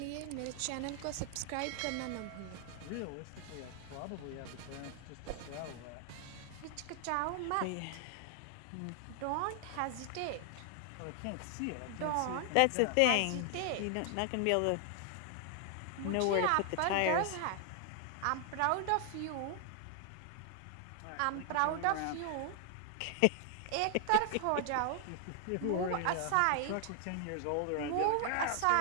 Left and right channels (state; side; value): different; both; correlation 0.00